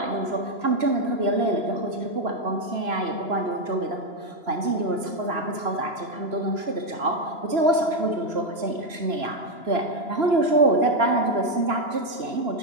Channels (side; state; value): left; late; 2.9 ms